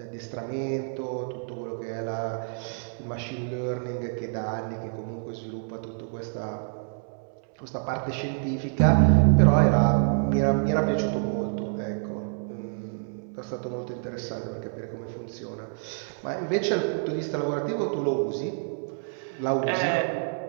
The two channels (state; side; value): silent; left; 60 dB below the other